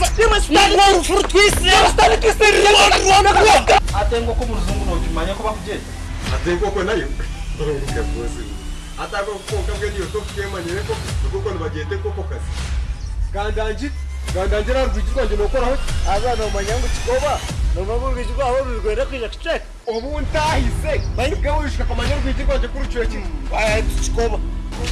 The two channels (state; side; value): identical; both; correlation 1.00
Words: fruit twist debo stari twist atengo ko muzungu no kimanya ko bakugenda atengo ko nayo uruka bose atako ko kabwe niyo to kemanyere ko kuko nibagende ko kazi gandangira rwigirwa nje nokoraho azana umanyango kikoba nobabu rwigirwa aho rwigwera kwija kitek ubu ntahise bayibwe wishika kamanyere rwigirwa nje kuri cyo kintu aya kikoba